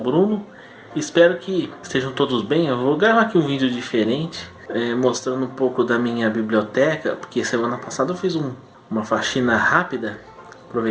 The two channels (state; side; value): identical; both; correlation 1.00